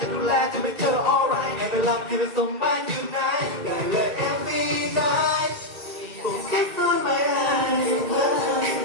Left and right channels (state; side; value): late; left; 2.3 ms